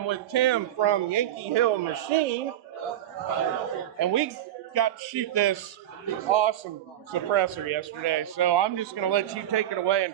with Tim from Yankee Hill Machine, and we got to shoot this awesome suppressor yesterday, so I'm just going to let you take it away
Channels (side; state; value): left; quieter; 12.0 dB